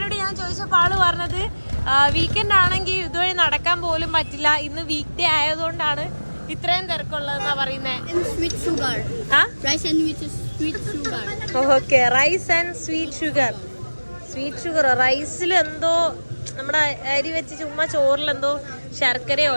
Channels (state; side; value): inverted; both; correlation -1.00